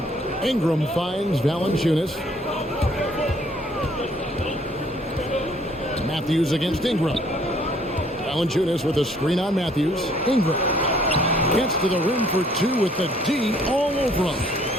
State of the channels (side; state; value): both; normal; correlation 0.61